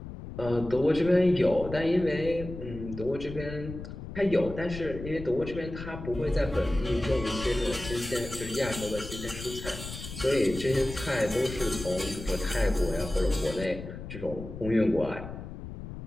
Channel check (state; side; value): noise; left; rumble, 10 dB below the sound